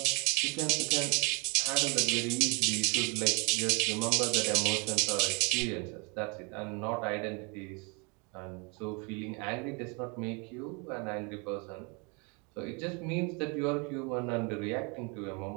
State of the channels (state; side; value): quieter; left; 32.3 dB